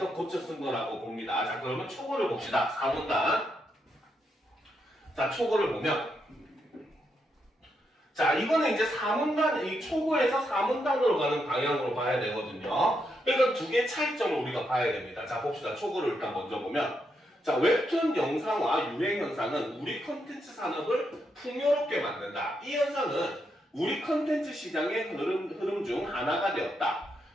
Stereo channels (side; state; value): both; normal; correlation 0.81